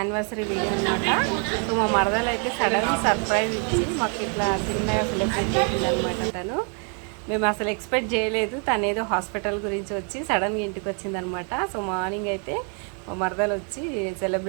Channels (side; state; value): left; quieter; 40.0 dB